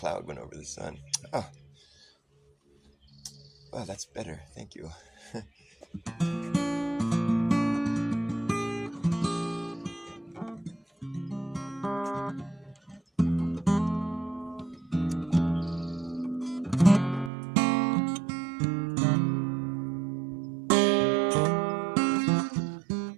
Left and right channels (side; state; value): left; drops out; at 17.3 s